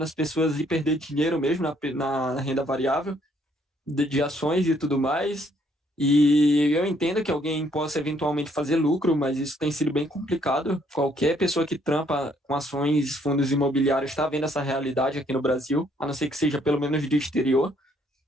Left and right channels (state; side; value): normal; both; correlation 0.67